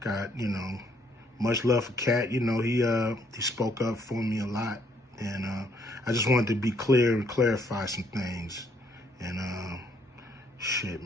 you know, much love for Katt. You know, he spoke up for me a lot. And I just wanted to be clear and clarify some things. And shit,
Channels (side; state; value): both; normal; correlation 0.68